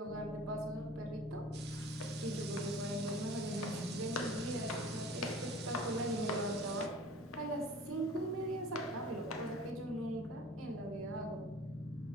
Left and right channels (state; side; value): normal; both; correlation 0.44